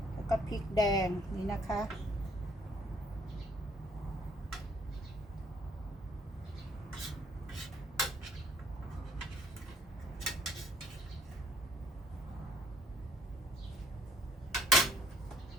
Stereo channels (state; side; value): normal; both; correlation 0.62